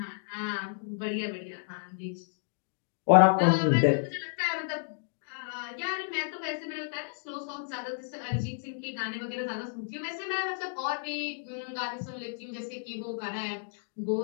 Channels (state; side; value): silent; right; digital silence